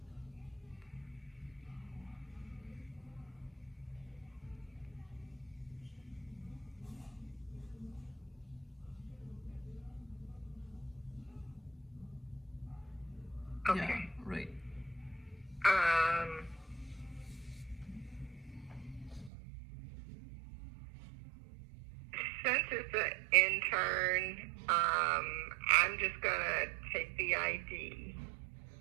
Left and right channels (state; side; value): drops out; left; at 19.3 s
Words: Okay. Yeah, right. Um, since it's an intern, I'm just gonna take the ID.